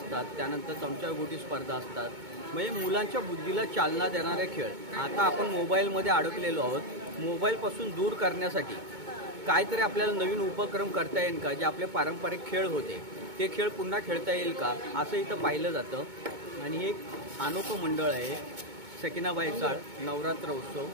त्यानंतर चमचागोटी स्पर्धा असतात. म्हणजे मुलांच्या बुद्धीला चालना देणारे खेळ. आता आपण मोबाईलमध्ये अडकलेलो आहोत. मोबाईलपासून दूर करण्यासाठी काहीतरी आपल्याला नवीन उपक्रम करता येईल का? जे आपले पारंपरिक खेळ होते ते खेळ पुन्हा खेळता येईल का असं इथं पाहिलं जातं. आणि हे एक अनोखं मंडळ आहे सकीनाबाई चाळ नवरात्र उत्सव.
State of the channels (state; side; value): late; left; 2.2 ms